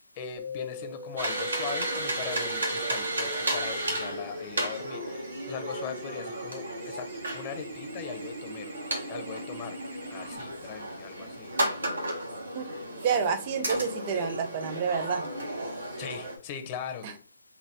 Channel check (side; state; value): both; inverted; correlation -0.60